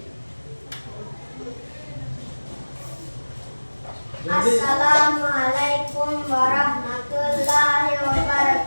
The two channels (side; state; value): both; inverted; correlation -1.00